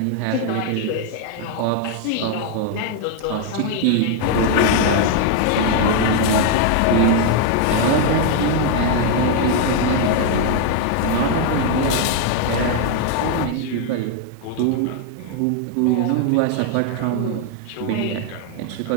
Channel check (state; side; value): different; both; correlation 0.01